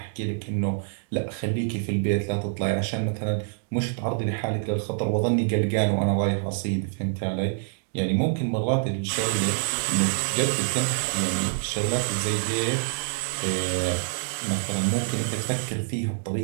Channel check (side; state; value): left; silent; digital silence